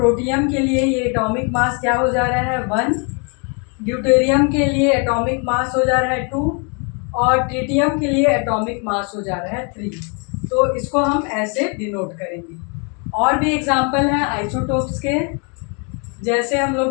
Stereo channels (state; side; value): quieter; right; 36.2 dB